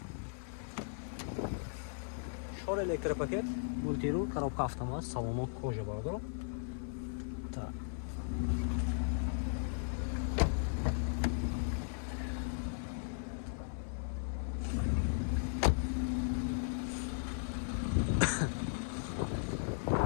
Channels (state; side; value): silent; right; 53 dB below the other